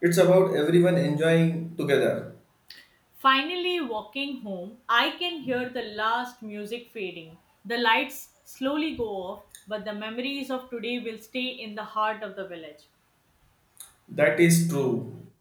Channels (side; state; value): both; identical; correlation 1.00